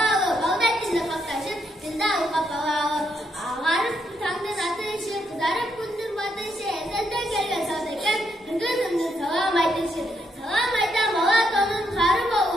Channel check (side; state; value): both; normal; correlation 0.78